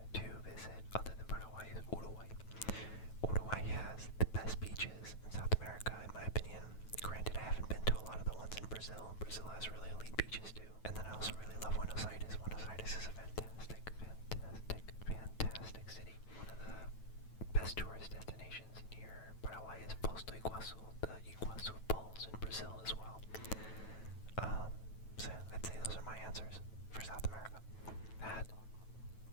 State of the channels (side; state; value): right; late; 9.2 ms